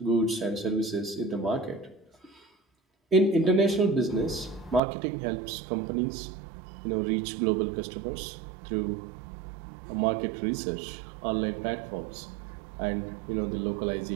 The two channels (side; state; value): left; drops out; at 4.8 s